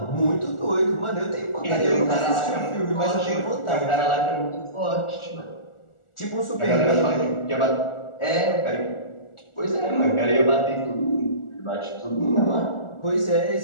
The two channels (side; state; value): right; late; 1.4 ms